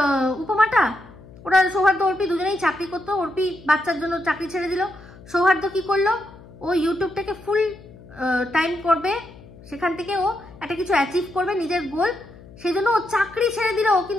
উপমাটা? ওরা সৌহার্দ্য অর্পি দুজনেই চাকরি করতো। অর্পি বাচ্চার জন্য চাকরি ছেড়ে দিল। সৌহার্দ্য কি করলো? ও ইউটিউবটাকে ফুল টাইম করবে, সেখান থেকে ও একটা কিছু অ্যাচিভ করবে, নিজের গোল, সেই জন্য ও চাকরি ছেড়ে দিল।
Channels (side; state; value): left; noise; hum, 21 dB below the sound